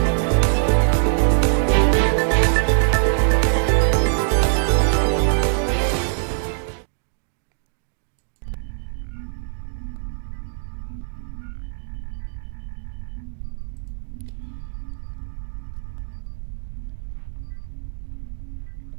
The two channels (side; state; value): left; silent; digital silence